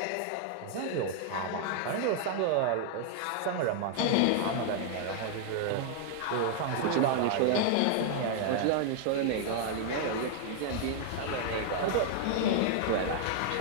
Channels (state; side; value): different; both; correlation 0.00